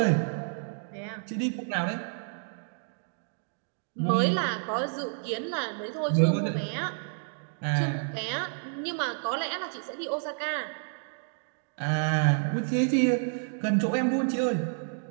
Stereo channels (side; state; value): left; silent; digital silence